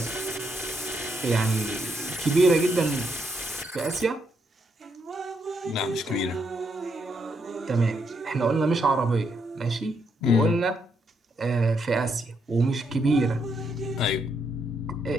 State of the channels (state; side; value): normal; both; correlation 0.77